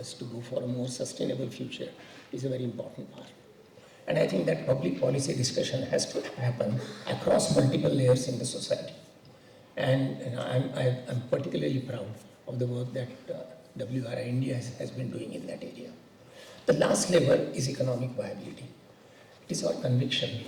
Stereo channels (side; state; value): both; identical; correlation 1.00